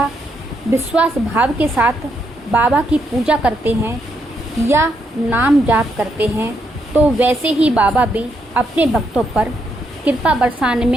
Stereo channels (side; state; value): both; normal; correlation 0.78